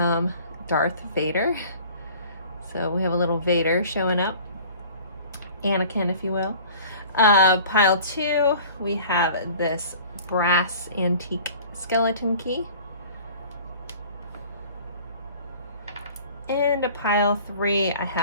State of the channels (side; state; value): both; inverted; correlation -0.47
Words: Darth Vader. So we have a little Vader showing up, Anakin, if you will. Pile 2, we have this brass antique skeleton key. And a pile 3, I